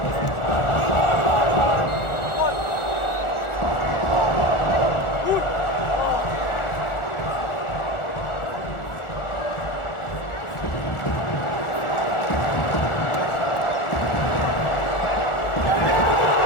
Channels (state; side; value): late; right; 1.4 ms